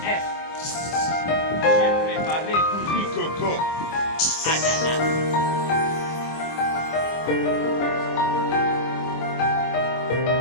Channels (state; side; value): late; right; 25 ms